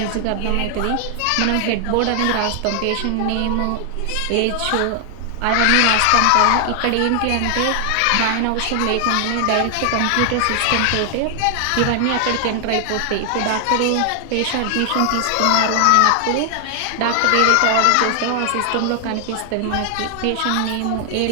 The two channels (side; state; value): both; different; correlation 0.00